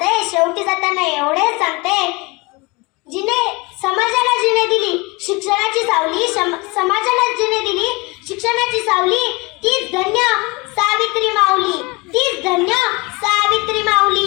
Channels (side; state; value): right; quieter; 25.9 dB